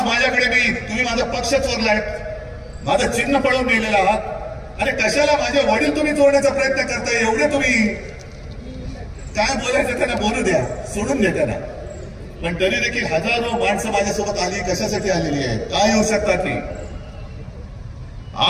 माझ्याकडे तुम्ही माझा पक्ष चोरलाय, माझं चिन्ह पळवून गेलेलं आहात. अरे कशाला माझे वडील तुम्ही चोरण्याचा प्रयत्न करताय? एवढे तुम्ही काय बोलायचं त्यांना बोलू द्या, सोडून द्या त्यांना. पण तरी देखील हजारो माणसं माझ्यासोबत आली, कशासाठी आलेली आहे, काय येऊ शकतात ती?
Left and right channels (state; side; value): identical; both; correlation 1.00